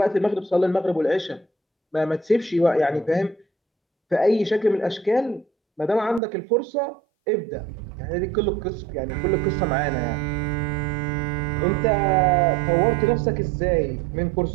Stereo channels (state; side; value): drops out; left; at 6.2 s